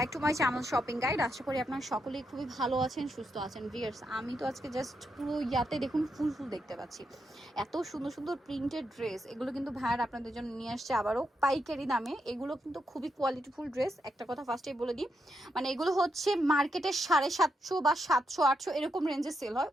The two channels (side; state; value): both; normal; correlation 0.82